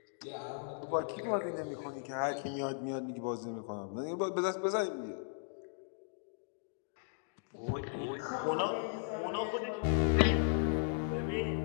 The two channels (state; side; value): silent; right; digital silence